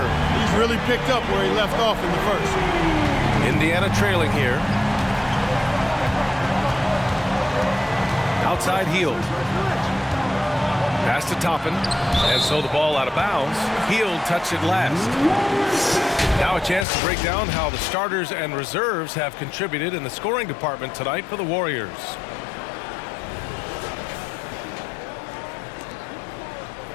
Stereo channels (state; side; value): drops out; right; at 16.9 s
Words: He's really picked up where he left off in the first. Indiana trailing here. Outside Hield. Pass to Toppin. And so the ball out of bounds. Hield touched it last. Now a chance to break down how the starters and reserves have contributed in the scoring department tonight for the Warriors.